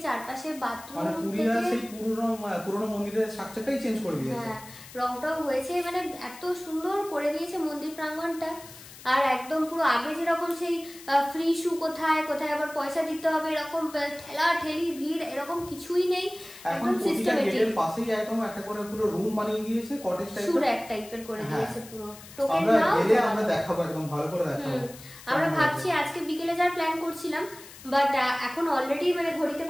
চারপাশে বাথরুম, মানে পুরীরা সেই পুরনো মন্দিরের স্ট্রাকচারটাই চেঞ্জ করে দিয়েছে। হ্যাঁ, রংটাও হয়েছে, মানে এত সুন্দর করে দিয়েছে মন্দির প্রাঙ্গণটা। আর একদম পুরো আগে যেরকম সেই ফ্রি শু কোথায় আবার পয়সা দিতে হবে এরকম ঠেলা ঠেলি ভিড় এরকম কিছুই নেই, একদম সিস্টেমেটিক। এর পাশেই একদম একটা করে পুরো রুম বানিয়ে দিয়েছে, কটেজ টাইপের, সুর এক টাইপের করে দিয়েছে পুরো। টোকেন আমরা নাও, গেলে আমরা দেখাবো, একদম ভালো করে দেখাবো। আমরা ভাবছি আজকে বিকেলে যাওয়ার প্ল্যান করছিলাম, বাট এখন অলরেডি মানে ঘড়িতে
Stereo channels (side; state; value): left; noise; hiss, 18 dB below the sound